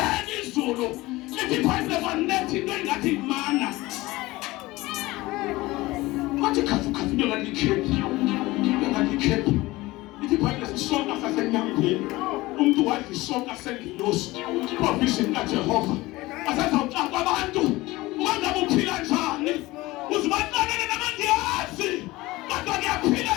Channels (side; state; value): right; quieter; 19.8 dB